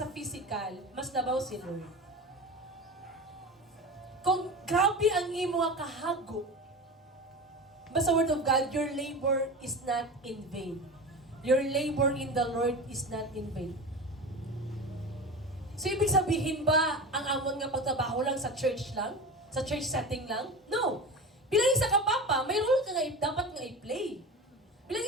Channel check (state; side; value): normal; both; correlation 0.30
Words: sa physical, mas nabaw si Lord. Kung grabe ang imo nga kahago, basta word of God, your labor is not in vain. Your labor in the Lord is not in vain. So, ibig sabihin ba, ang amon nga pagtrabaho lang sa church lang? Sa church setting lang? No. Bilang isa ka papa, may role ka nga dapat nga i-play. Bilang